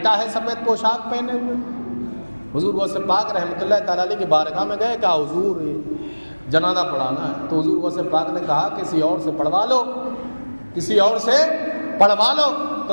ہے سفید پوشاک پہنے ہوئے، حضور غوث پاک رحمۃ اللہ تعالیٰ علیہ کی بارگاہ میں گئے، کہا حضور جنازہ پڑھانا ہے، تو حضور غوث پاک نے کہا کسی اور سے پڑھوا لو، کسی اور سے پڑھوا لو،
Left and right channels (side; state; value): both; inverted; correlation -1.00